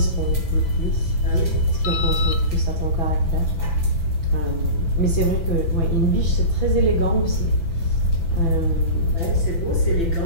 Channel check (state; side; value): late; right; 6.0 ms